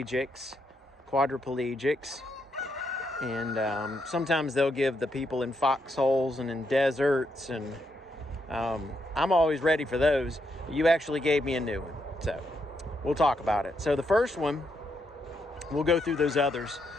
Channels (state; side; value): normal; both; correlation 0.79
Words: quadriplegics. And sometimes they'll give the people in foxholes and in deserts. And I'm always ready for those. You actually gave me a new one. So we'll talk about it. So the first one, we'll go through those others.